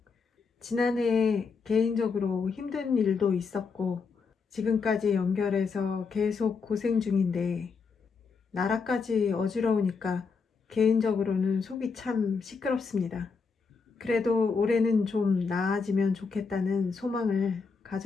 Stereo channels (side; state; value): right; quieter; 5.0 dB